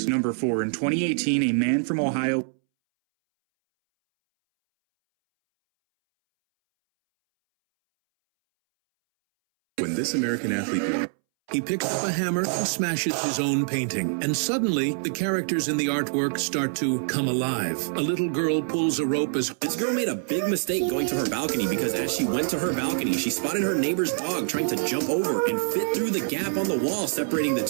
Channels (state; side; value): silent; left; 62 dB below the other